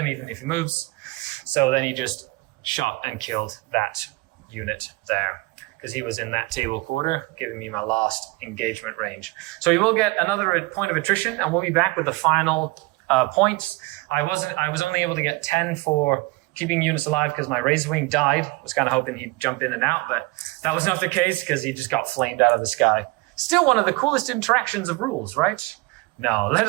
even if he moves. So then he just shot and killed that unit there, because he was in that table quarter, giving me my last engagement range. So he will get another point of attrition, and we'll be back with the final points. I was only able to get 10 for keeping units alive because my Razorwing died. I was kind of hoping he'd jump in and out, but that was not the case because he just got flamed out of the sky. Still one of the coolest interactions of rules, right? No, let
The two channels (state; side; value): quieter; left; 23.9 dB